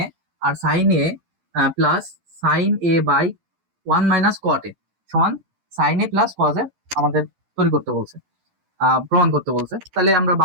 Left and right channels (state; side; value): late; left; 12 ms